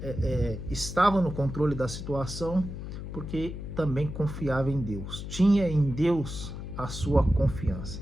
estava no controle da situação, porque também confiava em Deus. Tinha em Deus a sua confiança.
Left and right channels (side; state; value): left; noise; hum, 8 dB below the sound